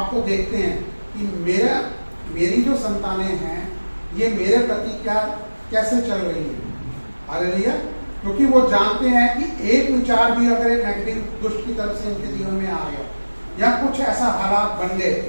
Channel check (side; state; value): both; inverted; correlation -1.00